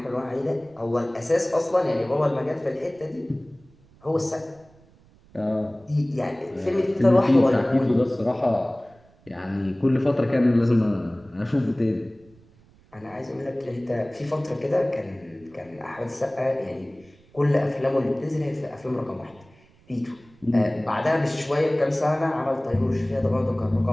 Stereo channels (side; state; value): right; noise; rumble, 29 dB below the sound